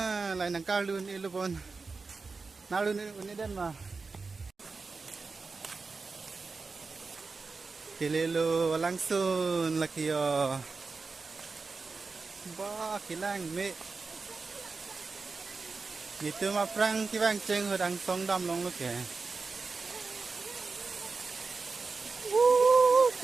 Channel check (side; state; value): left; quieter; 4.3 dB